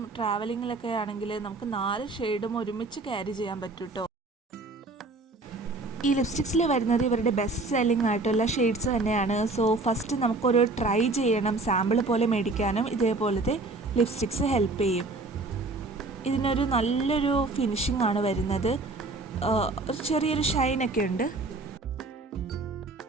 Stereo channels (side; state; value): left; quieter; 3.3 dB